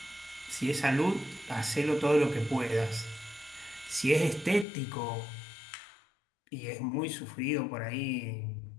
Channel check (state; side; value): drops out; right; at 4.7 s